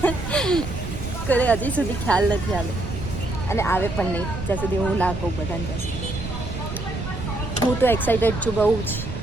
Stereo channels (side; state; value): right; noise; rumble, 7 dB below the sound